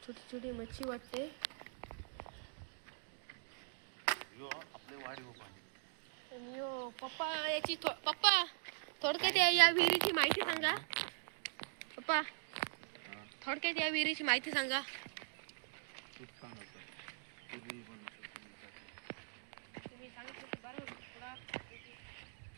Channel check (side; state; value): left; silent; digital silence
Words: छोटी छोटी मच्छी वाटते. आणि पप्पा याची पप्पा थोडक्यात या विहिरीची माहिती सांगा. पप्पा थोडक्यात या विहिरीची माहिती सांगा. तुम्ही सांगितलं की बरं थोडा.